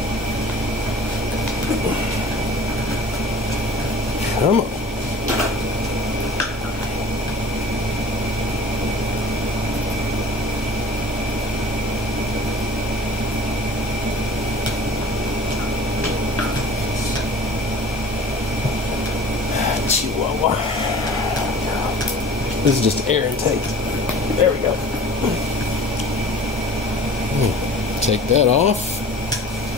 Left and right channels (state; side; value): normal; both; correlation 0.44